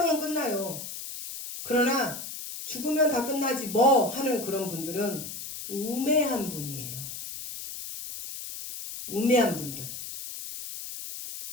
끝나요. 그러나 죽으면 다 끝나지 뭐 하는 그런 분들은 우매한 분이에요. 우매한 분들.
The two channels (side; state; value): left; noise; hiss, 9 dB below the sound